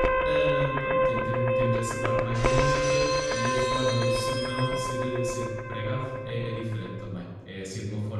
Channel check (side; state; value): both; identical; correlation 1.00